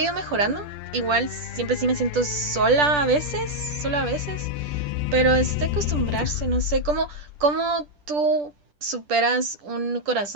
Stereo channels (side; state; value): left; late; 10 ms